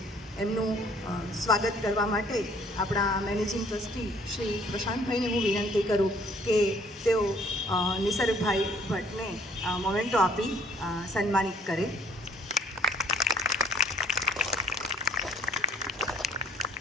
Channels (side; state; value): both; normal; correlation 0.60